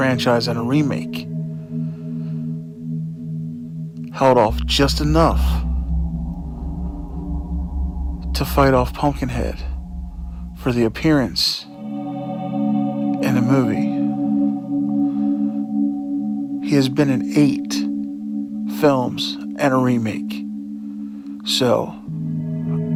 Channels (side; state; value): both; identical; correlation 1.00